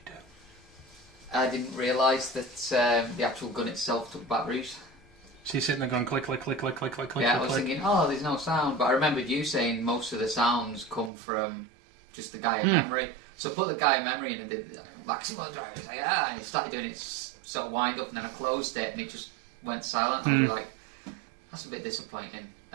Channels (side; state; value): left; drops out; at 11.1 s